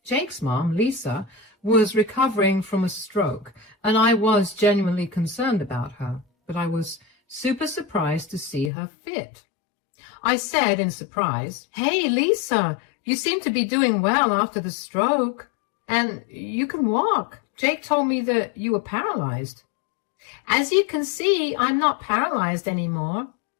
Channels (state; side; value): drops out; right; at 8.7 s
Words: Jake's mom, Lisa, was recovering from a stroke, and I was genuinely concerned about her, but I was super surprised to see her fit. I said in surprise, "Hey, Lisa, you seem to be doing well after the stroke, and you can walk. Jake told me that you were paralyzed." "As you can see, I'm not paralyzed anymore."